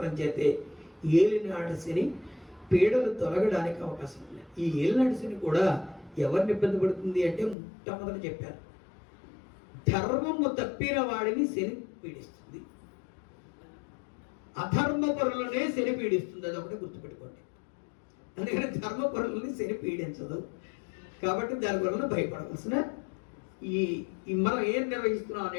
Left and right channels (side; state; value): right; drops out; at 7.6 s